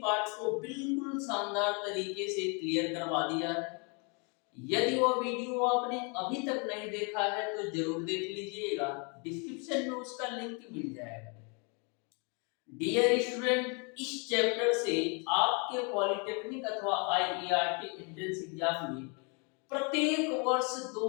को बिल्कुल शानदार तरीके से क्लियर करवा दिया है। यदि वह वीडियो आपने अभी तक नहीं देखा है तो जरूर देख लीजिएगा, डिस्क्रिप्शन में उसका लिंक मिल जाएगा। डियर स्टूडेंट, इस चैप्टर से आपके पॉलिटेक्निक अथवा आईईआरटी एंट्रेंस एग्जाम में प्रत्येक वर्ष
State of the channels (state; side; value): quieter; right; 34.2 dB